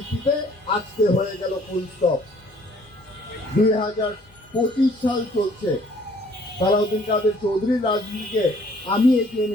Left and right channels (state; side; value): noise; left; hum, 30 dB below the sound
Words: আজকে হয়ে গেল ফুল স্টপ। 2025 সাল চলছে, সালাউদ্দিন কাদের চৌধুরীর রাজনীতিকে আমি এগিয়ে